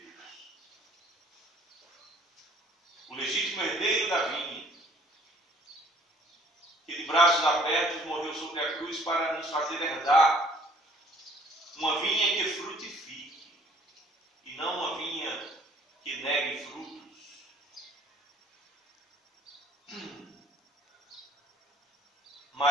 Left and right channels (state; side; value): normal; both; correlation 0.57